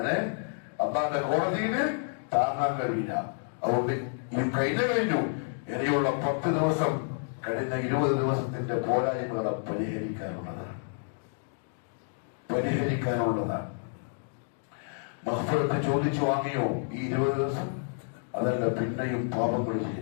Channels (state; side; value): silent; right; digital silence